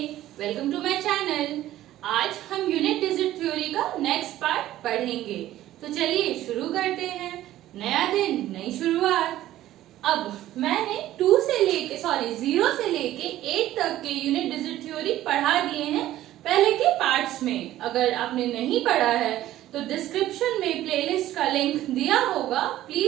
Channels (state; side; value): quieter; left; 14.0 dB